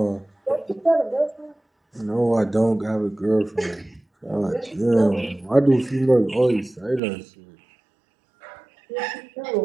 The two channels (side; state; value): left; drops out; at 7.0 s